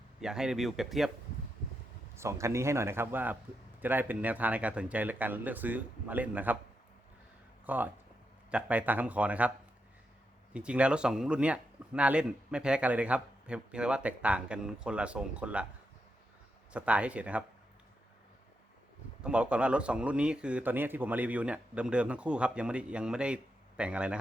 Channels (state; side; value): normal; both; correlation 0.84